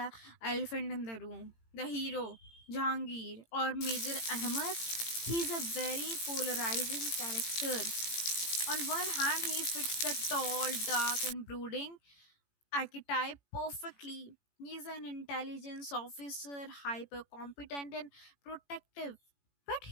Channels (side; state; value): right; late; 18 ms